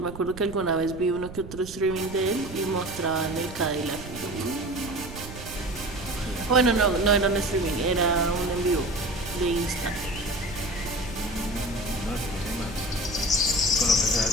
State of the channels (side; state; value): right; noise; rumble, 13 dB below the sound